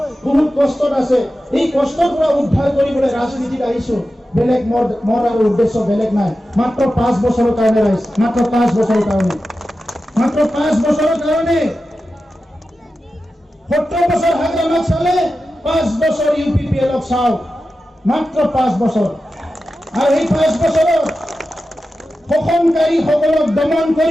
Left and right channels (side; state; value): both; normal; correlation 0.92